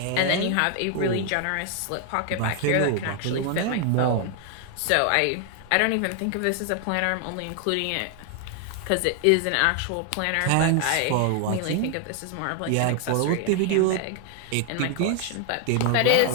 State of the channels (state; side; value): different; both; correlation 0.00